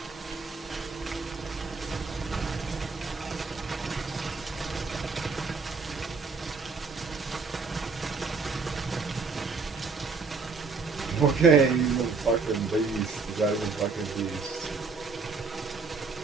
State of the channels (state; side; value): quieter; left; 4.6 dB